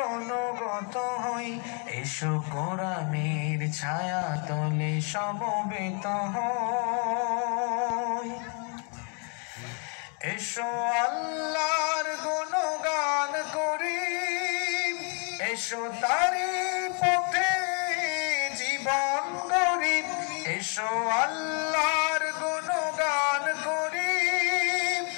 অনুগত হই, এসো কোরআনের ছায়া তলে সমবেত হই। এসো আল্লাহর গুণগান করি, এসো তারি পথে জীবন গড়ি। এসো আল্লাহর গুণগান করি,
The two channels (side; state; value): right; quieter; 38.9 dB